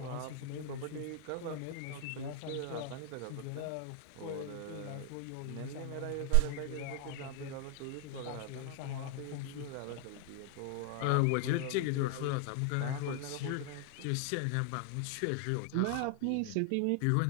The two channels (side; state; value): both; different; correlation 0.00